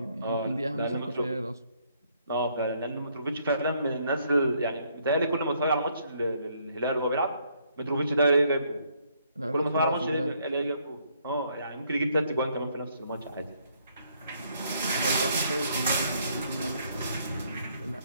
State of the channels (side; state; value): both; inverted; correlation -0.69